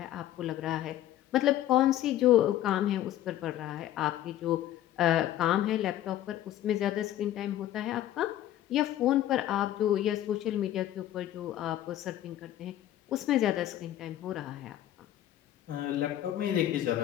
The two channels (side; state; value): right; quieter; 12.7 dB